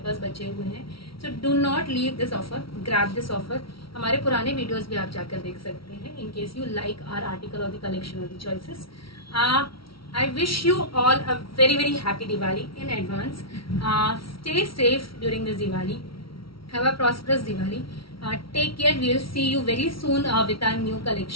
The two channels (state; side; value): late; right; 0.75 ms